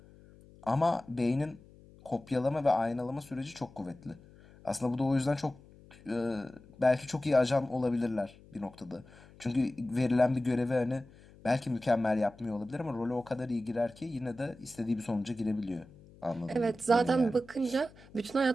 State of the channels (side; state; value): left; noise; hum, 23 dB below the sound